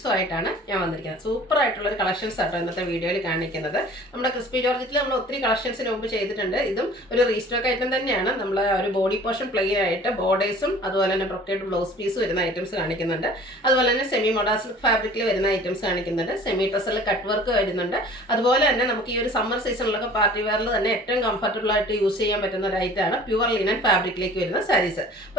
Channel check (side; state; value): both; normal; correlation 0.47